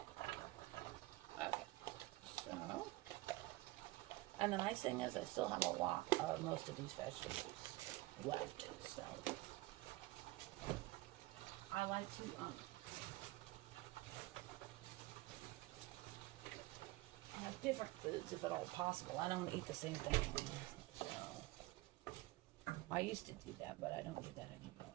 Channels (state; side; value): quieter; left; 20.0 dB